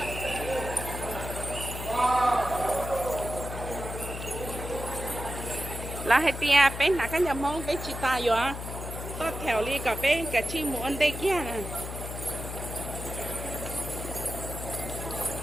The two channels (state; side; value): noise; left; hum, 7 dB below the sound